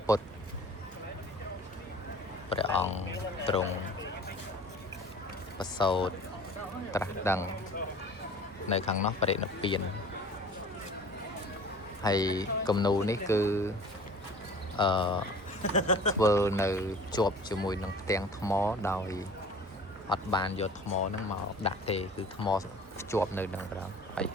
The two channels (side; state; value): both; normal; correlation 0.45